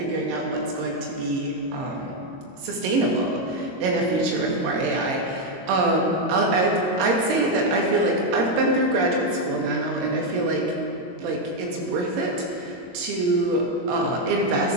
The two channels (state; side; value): late; left; 22 ms